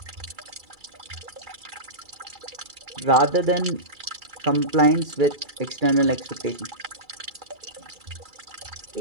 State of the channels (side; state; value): left; late; 2.3 ms